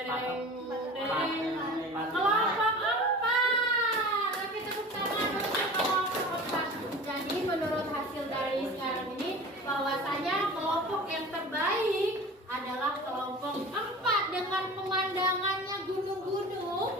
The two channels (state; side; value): normal; both; correlation 0.38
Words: tereng. Kelompok 4. Tapi tepuk tangan untuk kelompok 4. Jadi menurut hasil dari sekarang ini, bahwasanya kelompok yang terbaik adalah kelompok 4 dengan pemandangannya